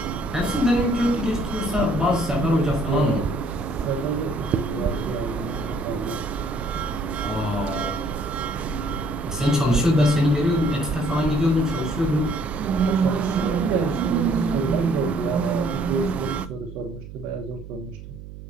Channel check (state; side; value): noise; right; hum, 14 dB below the sound